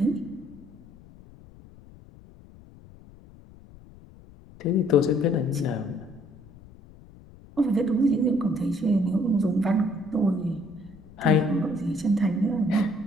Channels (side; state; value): left; noise; rumble, 22 dB below the sound